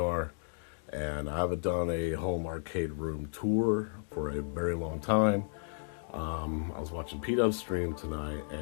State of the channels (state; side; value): silent; right; digital silence